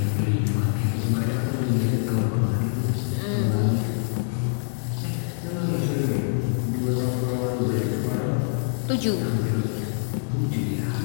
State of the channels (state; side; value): silent; right; 62 dB below the other